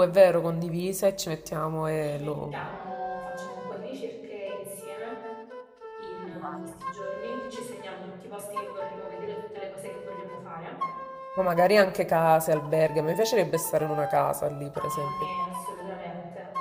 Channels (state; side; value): identical; both; correlation 1.00